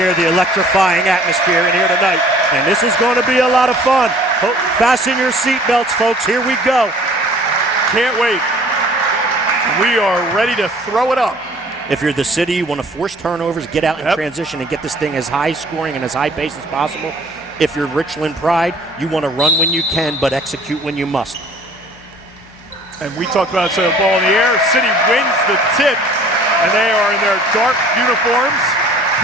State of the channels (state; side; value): normal; both; correlation 0.52